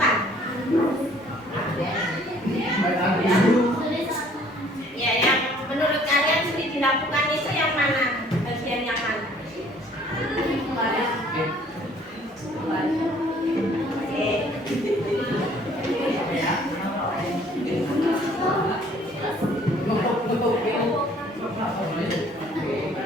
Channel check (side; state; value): both; normal; correlation 0.57